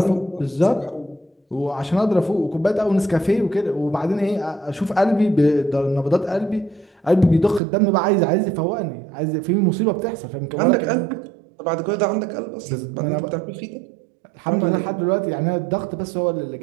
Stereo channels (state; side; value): drops out; left; at 7.6 s